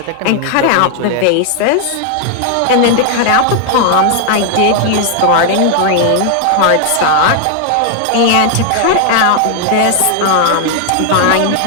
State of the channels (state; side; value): different; both; correlation 0.00